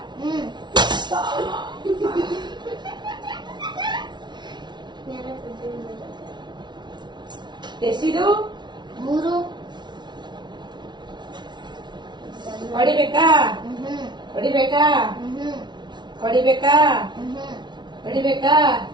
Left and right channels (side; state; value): left; late; 0.21 ms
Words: ಎಷ್ಟಿದು? 3 ಹೊಡಿಬೇಕಾ? ಹೊಡಿಬೇಕಾ? ಹೊಡಿಬೇಕಾ? ಹೊಡಿಬೇಕಾ?